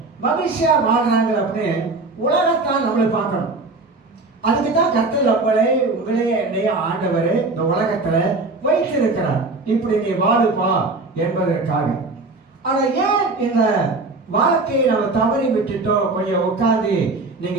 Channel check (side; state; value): left; quieter; 3.5 dB